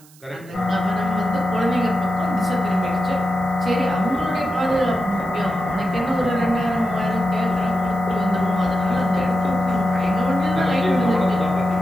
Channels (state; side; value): noise; right; hiss, 26 dB below the sound